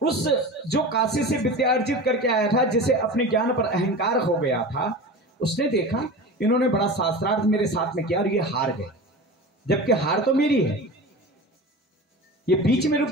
उस जो काशी से विद्या अर्जित करके आया था, जिसे अपने ज्ञान पर अहंकार हो गया था, उसने देखा इन्होंने बड़ा शास्त्रार्थ मेरे साथ में किया और ये हार गए, जबकि हार तो मेरी है। ये बीच में रुक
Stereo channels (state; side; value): normal; both; correlation 0.31